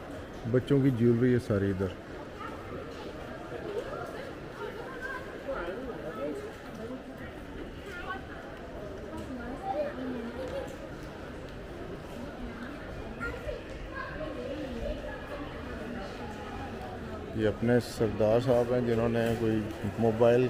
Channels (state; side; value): identical; both; correlation 1.00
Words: बच्चों की ज्वेलरी है सारी इधर। ये अपने सरदार साहब हैं जिन्होंने कोई मोबाइल